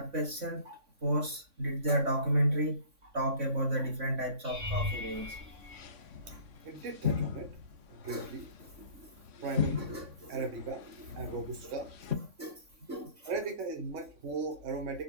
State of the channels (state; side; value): late; left; 3.6 ms